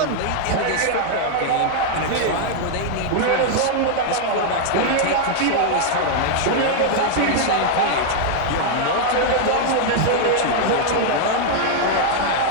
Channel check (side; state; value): both; different; correlation 0.00